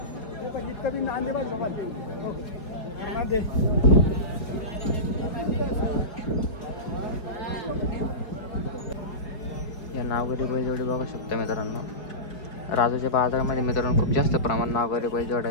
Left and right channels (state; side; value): late; right; 4.9 ms